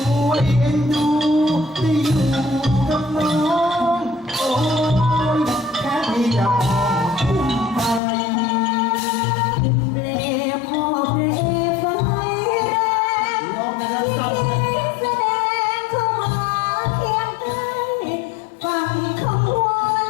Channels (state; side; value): drops out; right; at 8.0 s